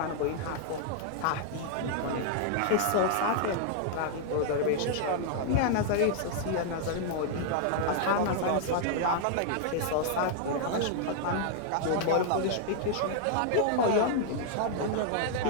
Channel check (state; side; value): different; both; correlation -0.01